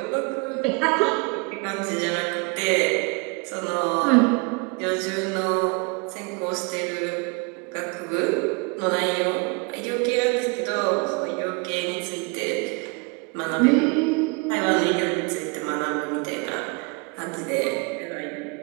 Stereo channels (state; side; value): quieter; left; 31.4 dB